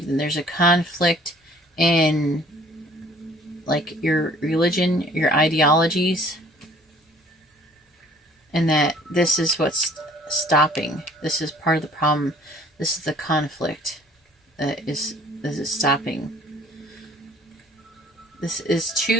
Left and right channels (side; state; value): both; normal; correlation 0.55